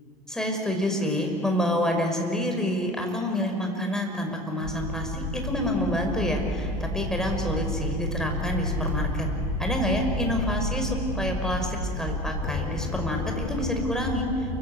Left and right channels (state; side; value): normal; both; correlation 0.39